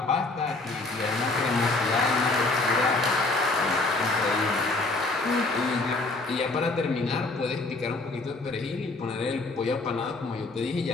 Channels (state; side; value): quieter; right; 3.2 dB